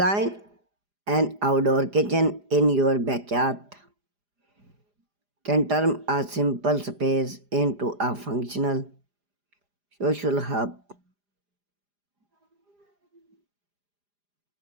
an outdoor kitchen in your backyard can turn a simple space into a functional social hub.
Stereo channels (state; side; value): late; left; 4.9 ms